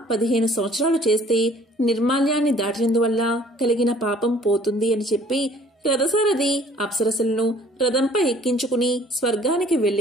15 సంవత్సరాలు చేస్తే నిర్మాల్యాన్ని దాటినందువల్ల కలిగిన పాపం పోతుంది అని చెప్పి రథసారథి అప్సరసలను రథంపై ఎక్కించుకుని స్వర్గానికి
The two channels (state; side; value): normal; both; correlation 0.55